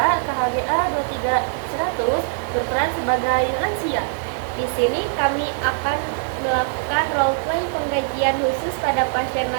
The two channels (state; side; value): silent; left; digital silence